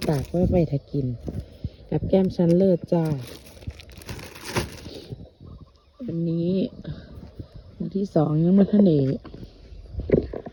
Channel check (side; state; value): both; identical; correlation 1.00